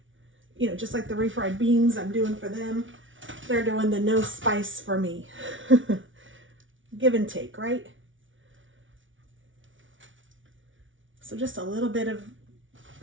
you know, just like the refried beans I'm doing for them, they're doing the no spice for me. Give and take, right? So just a little bit of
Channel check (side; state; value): left; late; 0.56 ms